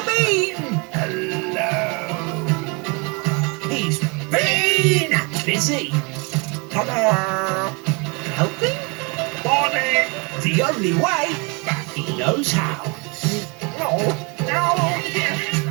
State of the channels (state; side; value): quieter; left; 30.8 dB